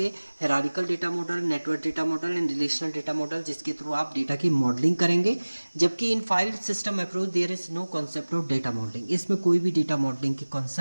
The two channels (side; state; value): both; inverted; correlation -1.00